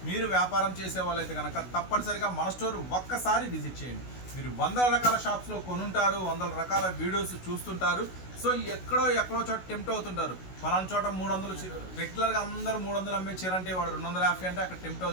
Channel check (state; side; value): late; right; 16 ms